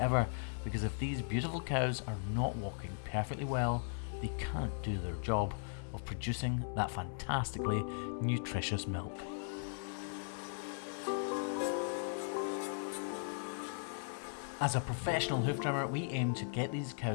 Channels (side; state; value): right; silent; digital silence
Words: because if these beautiful cows are not walking perfectly well, they can't do their job of producing that fantastically nutritious milk. As a professional hoof trimmer, we aim to get these